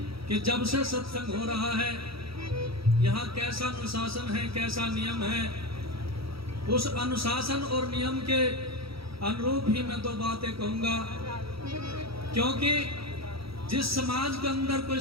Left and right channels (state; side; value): late; left; 0.76 ms